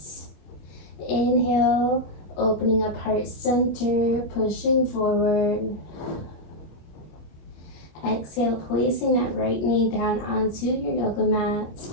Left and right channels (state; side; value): late; right; 25 ms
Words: Inhale, opening up heart center, pushing forward. Exhale, placing that right knee down onto your yoga mat.